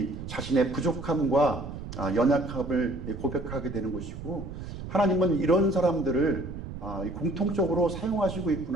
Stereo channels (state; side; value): noise; right; rumble, 9 dB below the sound